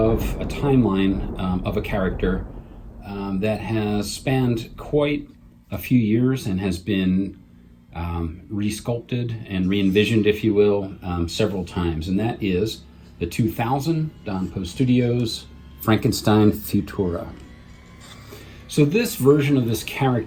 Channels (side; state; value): both; identical; correlation 1.00